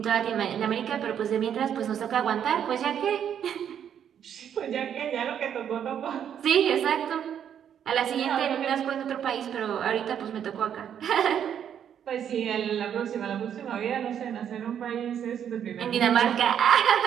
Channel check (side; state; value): left; quieter; 9.0 dB